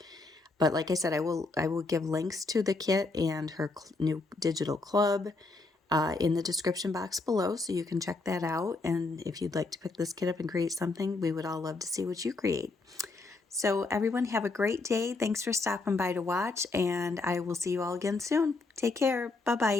But like I said, I will give links to the kit and her new digital club in the description box below, so you can check that out. And if you'd like to pick this kit up and create something, we would all love to see what you create. So everyone have a great day. Thanks for stopping by to watch, and I will see you all again soon. Take care.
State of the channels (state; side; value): quieter; right; 3.6 dB